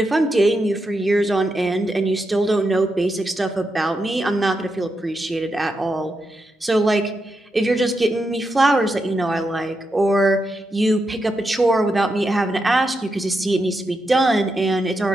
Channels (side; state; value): both; normal; correlation 0.85